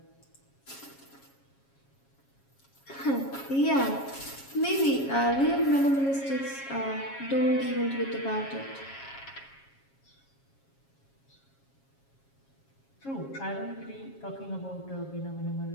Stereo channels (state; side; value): late; right; 7.3 ms